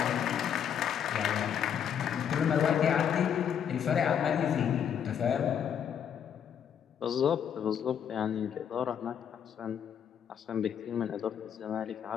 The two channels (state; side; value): quieter; right; 8.5 dB